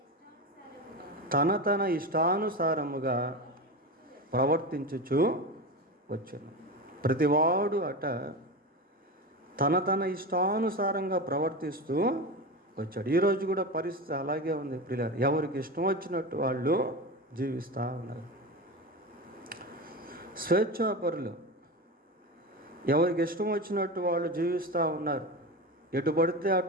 తన ఇష్టానుసారముగా ప్రవర్తించుచు వచ్చును. ప్రతివాడు తన ఇష్టానుసారంగా ప్రవర్తిస్తూ వచ్చాడు. ఈరోజు కూడా పరిస్థితి అలాగే ఉంది ప్రియులారా. ఎవరికి ఇష్టం వచ్చినట్టు వాళ్ళు జీవిస్తూ ఉన్నారు. స్వేచ్ఛాపరులు ఎవరికి ఇష్టం వచ్చినట్టు వాళ్ళు జీవిస్తూ ఉన్నారు. ఎటు పడితే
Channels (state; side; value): normal; both; correlation 0.23